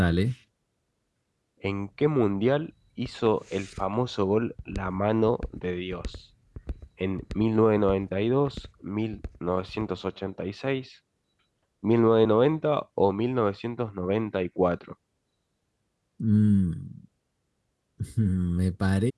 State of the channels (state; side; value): identical; both; correlation 1.00